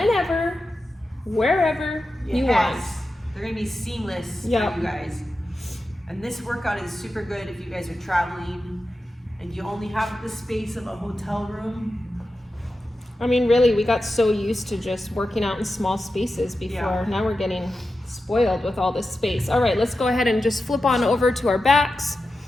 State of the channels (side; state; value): both; normal; correlation 0.91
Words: wherever you want. They're gonna be seamless Yep. for you guys. And this workout is super good if you guys are traveling and you only have the space of a hotel room. I mean, really, we got so used to just working out in small spaces before. Yeah. Now we're getting spoiled with all this space. All right, let's go ahead and just flip on over to our backs.